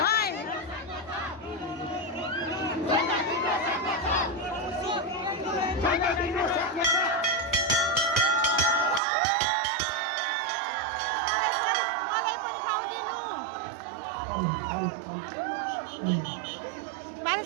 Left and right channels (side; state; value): left; drops out; at 9.0 s